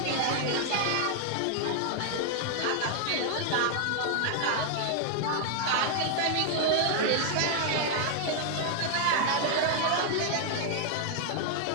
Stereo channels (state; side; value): different; both; correlation 0.00